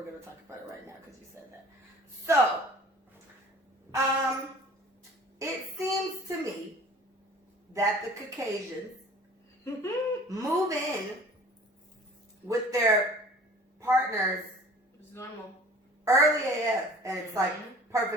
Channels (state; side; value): normal; both; correlation 0.47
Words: going to talk about it right now because you said that. So, it seems to me that the Caucasians move in with their partners It's normal. early AF, and it's like